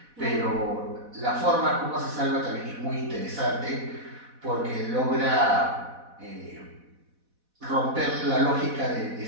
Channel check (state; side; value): late; left; 4.1 ms